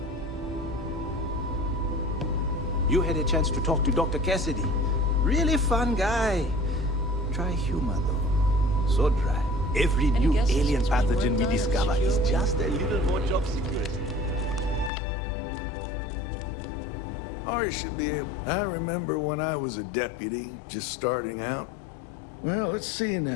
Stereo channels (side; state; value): right; drops out; at 14.9 s